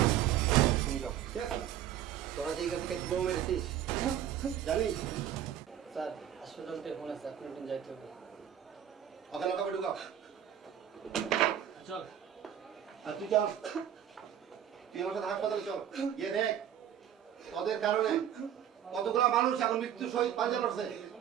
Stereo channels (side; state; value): left; quieter; 10.3 dB